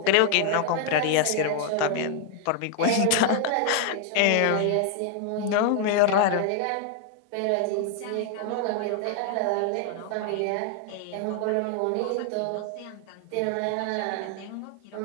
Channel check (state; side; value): different; both; correlation 0.00